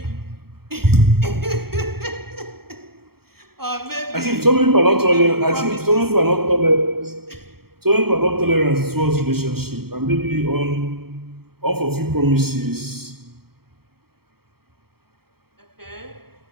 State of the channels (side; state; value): left; late; 0.95 ms